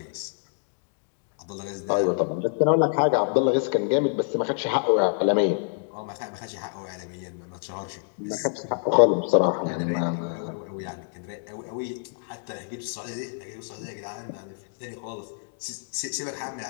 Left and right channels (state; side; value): silent; right; digital silence